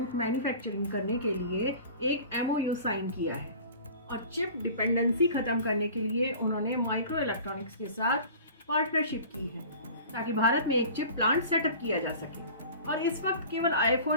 मैन्युफैक्चरिंग करने के लिए एक MOU साइन किया है। और चिप डिपेंडेंसी खत्म करने के लिए उन्होंने माइक्रो इलेक्ट्रॉनिक्स के साथ पार्टनरशिप की है ताकि भारत में एक चिप प्लांट सेटअप किया जा सके। और इस वक्त केवल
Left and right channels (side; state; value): both; inverted; correlation -0.42